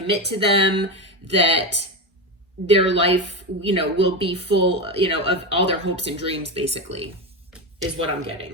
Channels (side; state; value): both; normal; correlation 0.16